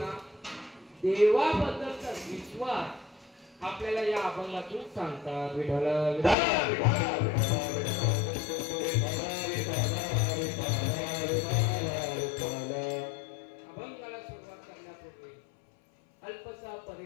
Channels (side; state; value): right; drops out; at 6.4 s